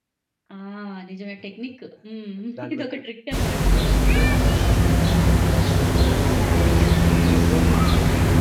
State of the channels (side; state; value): both; identical; correlation 1.00